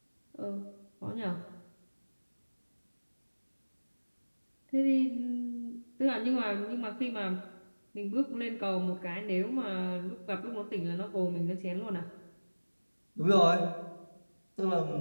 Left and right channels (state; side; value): inverted; both; correlation -1.00